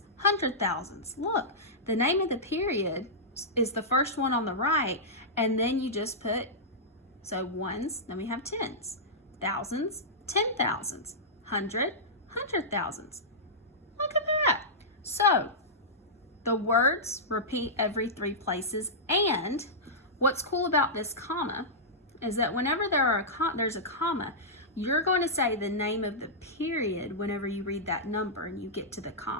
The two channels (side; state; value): both; normal; correlation -0.13